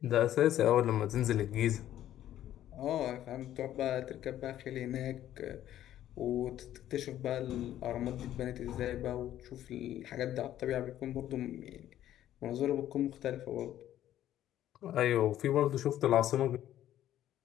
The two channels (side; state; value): right; quieter; 12.3 dB